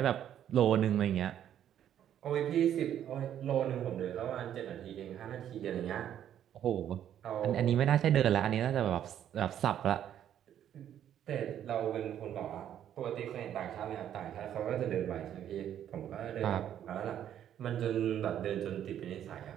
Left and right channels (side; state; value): left; quieter; 10.3 dB